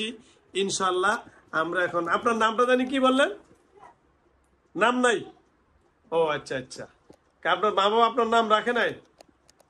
ইনশাল্লাহ। আমরা এখন আপনার নামটা জানি কি বললেন? নাম নাই? ও আচ্ছা আচ্ছা, আপনার মা বাবা আপনার নাম রাখে নাই?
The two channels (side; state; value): both; identical; correlation 1.00